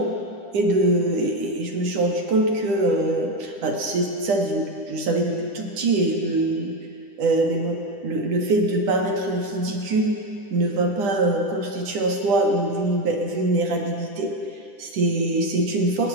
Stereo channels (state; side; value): late; left; 10 ms